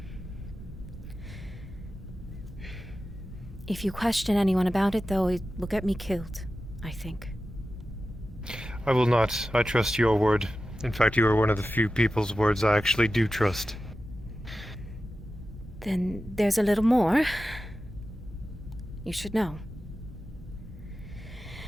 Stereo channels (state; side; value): normal; both; correlation 0.93